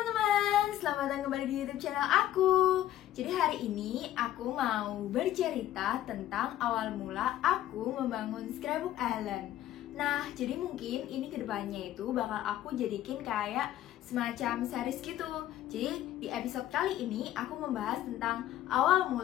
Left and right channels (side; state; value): right; quieter; 12.9 dB